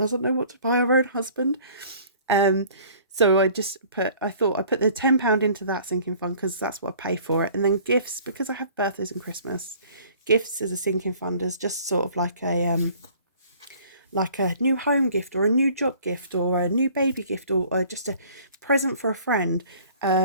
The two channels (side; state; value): both; inverted; correlation -0.52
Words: know what to buy her own husband. So I thought I'd put the £10 into that sinking fund because that's what I pay for it. And then gifts, because I have birthdays and Christmas, gifts as a sinking fund is just sort of like a new home gift or a new job gift or a new baby gift or just a present for a friend.